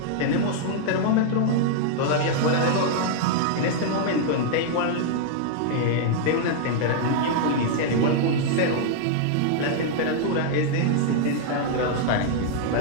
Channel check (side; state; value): both; different; correlation -0.01